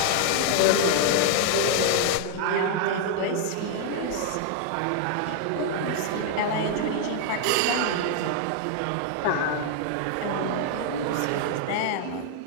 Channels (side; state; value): both; different; correlation 0.00